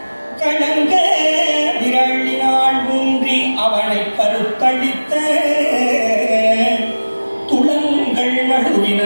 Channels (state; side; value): inverted; both; correlation -1.00